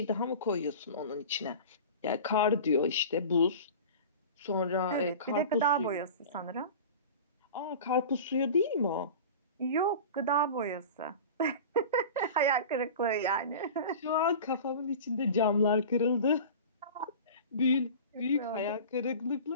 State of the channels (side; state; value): both; inverted; correlation -0.35